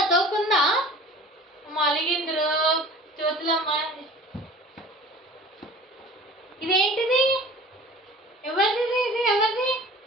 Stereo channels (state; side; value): normal; both; correlation 0.43